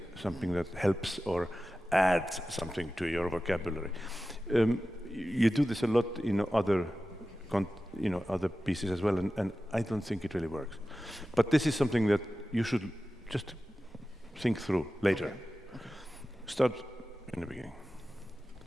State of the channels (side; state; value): both; normal; correlation 0.95